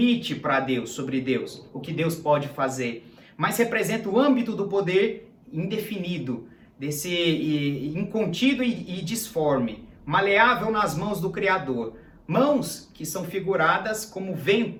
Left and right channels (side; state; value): both; identical; correlation 1.00